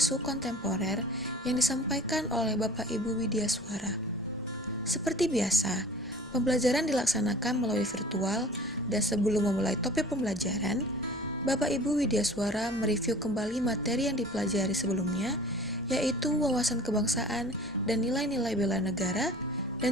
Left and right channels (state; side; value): normal; both; correlation 0.44